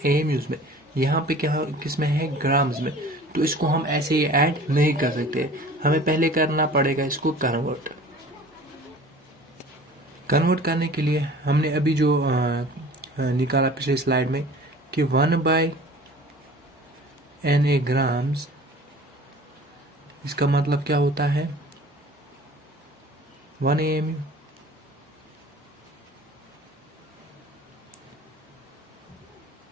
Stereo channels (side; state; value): both; normal; correlation 0.45